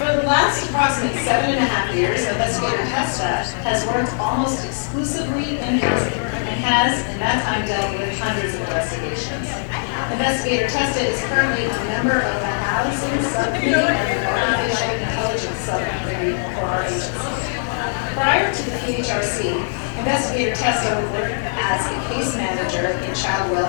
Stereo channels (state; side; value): silent; right; digital silence